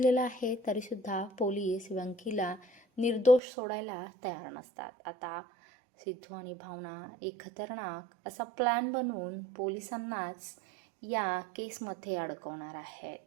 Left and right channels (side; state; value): left; drops out; at 3.4 s